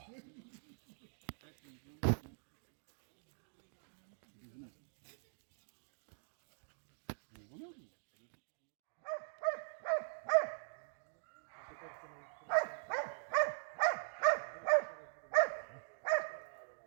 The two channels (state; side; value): silent; left; digital silence